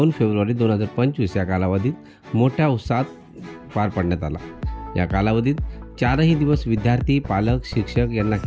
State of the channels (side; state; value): both; identical; correlation 1.00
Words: फेब्रुवारी 2025 या कालावधीत मोठ्या उत्साहात पार पाडण्यात आला। या कालावधीत 4ही दिवस विद्यार्थी, पालक, शिक्षक यांना